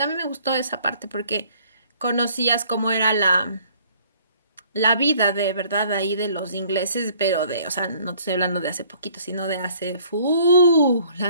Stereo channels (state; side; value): inverted; both; correlation -0.58